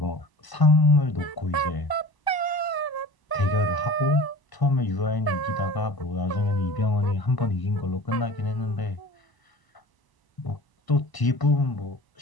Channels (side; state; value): right; late; 1.0 ms